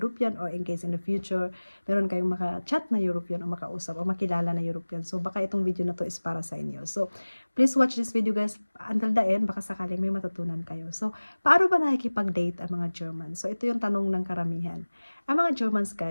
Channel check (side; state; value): both; inverted; correlation -1.00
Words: or in case in the future, meron kayong maka-chat na European o makausap o makilala na European. So baka itong video na to is para sa inyo. So please watch this video guys until the end, baka sakaling may matutunan kayo. So paano ba nakikipag-date ang mga German? So ito yung tanong ng karamihan. Ang mga Germans